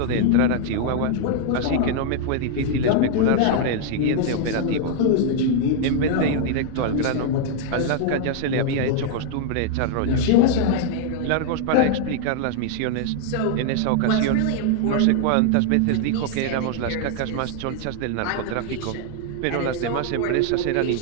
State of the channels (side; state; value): both; different; correlation 0.00